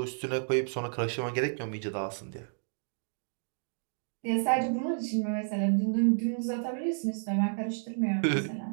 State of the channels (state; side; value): silent; left; digital silence